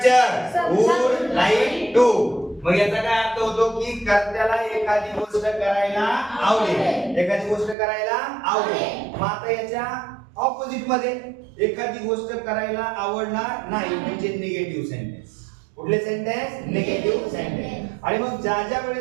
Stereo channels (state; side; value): drops out; left; at 7.8 s